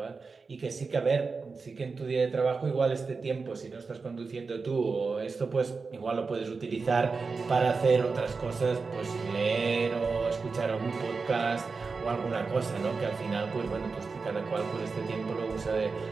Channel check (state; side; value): quieter; left; 4.5 dB